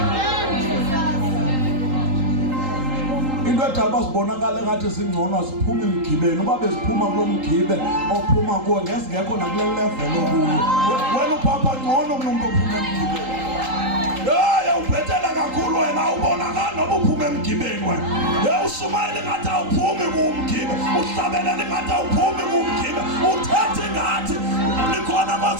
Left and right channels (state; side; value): late; left; 3.8 ms